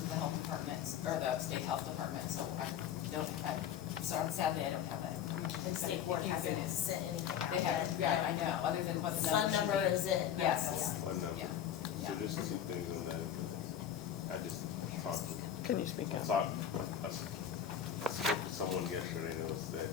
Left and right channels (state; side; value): quieter; right; 9.5 dB